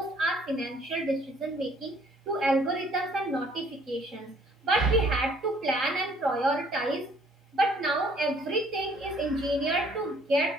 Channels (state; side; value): normal; both; correlation 0.60